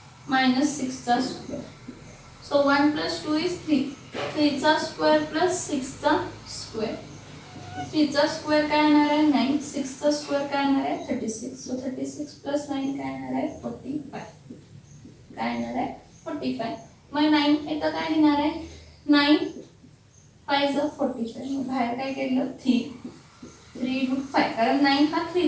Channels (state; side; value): identical; both; correlation 1.00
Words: -6 चा स्क्वेअर. सो 1 प्लस 2 इज 3 चा स्क्वेअर प्लस 6 चा स्क्वेअर. 3 चा स्क्वेअर काय येणार आहे 9. 6 चा स्क्वेअर काय येणार आहे 36. सो 36 प्लस 9 काय येणार आहे 45. काय येणार आहे 45. मग 9 इथं काय लिहिणार आहे 9 5 45. मग बाहेर काय केलं 3 रूट 5 कारण 9 हा 3